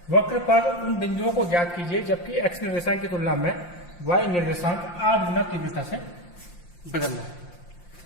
वक्र पर उन बिंदुओं को ज्ञात कीजिए जबकि x निर्देशांक की तुलना में y निर्देशांक 8 गुना तीव्रता से बदलना है।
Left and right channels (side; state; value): right; late; 5.7 ms